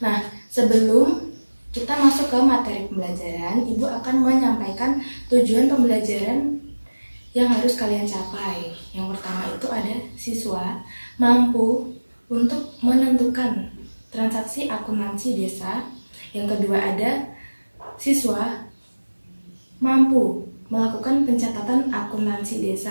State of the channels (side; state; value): both; inverted; correlation -1.00